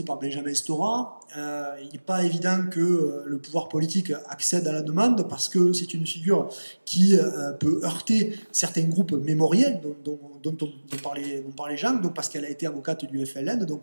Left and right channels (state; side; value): inverted; both; correlation -1.00